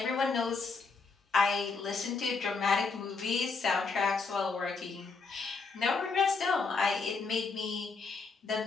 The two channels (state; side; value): quieter; right; 4.5 dB